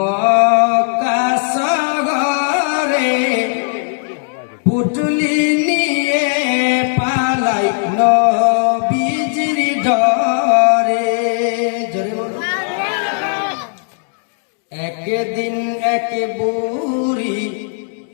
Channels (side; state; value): right; silent; digital silence